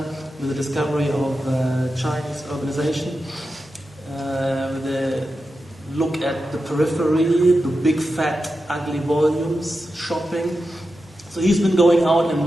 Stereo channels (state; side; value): normal; both; correlation 0.90